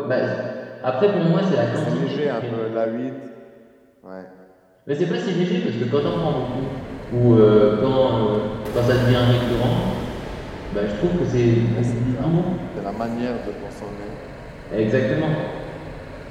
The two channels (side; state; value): both; identical; correlation 1.00